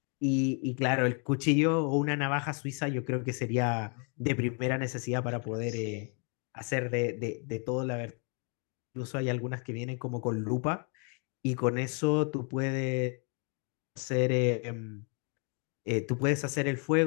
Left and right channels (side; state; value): right; quieter; 38.6 dB